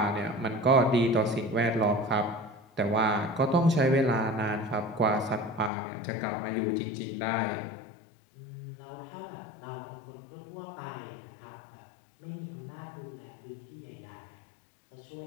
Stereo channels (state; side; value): drops out; right; at 5.7 s